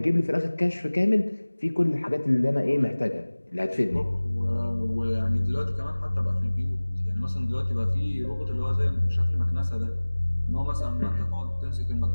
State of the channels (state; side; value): inverted; both; correlation -1.00